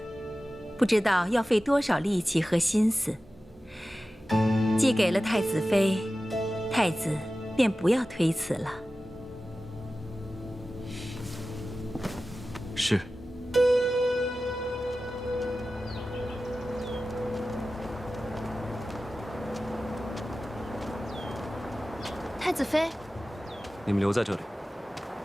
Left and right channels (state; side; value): normal; both; correlation 0.95